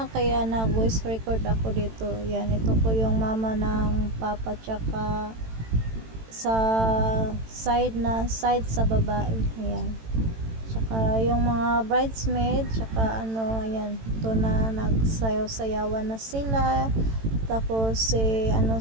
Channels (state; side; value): late; left; 18 ms